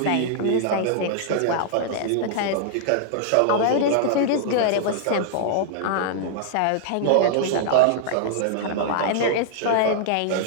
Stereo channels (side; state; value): both; different; correlation -0.01